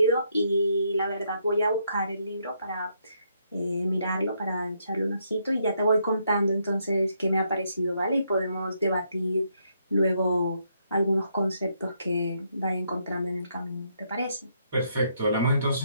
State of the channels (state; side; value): inverted; both; correlation -0.75